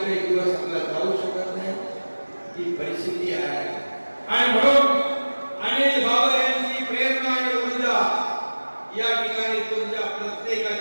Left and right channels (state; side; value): inverted; both; correlation -1.00